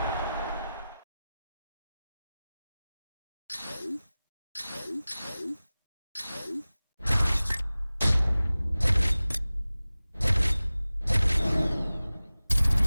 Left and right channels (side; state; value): both; inverted; correlation -0.97